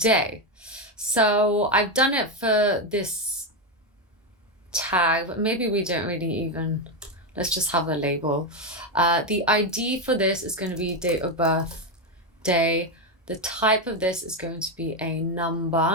So I've done it for this tag, but maybe we don't really even, let's just have a label. The ID for this is going to be date of birth day. The type of this is going to be a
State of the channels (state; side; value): normal; both; correlation 0.08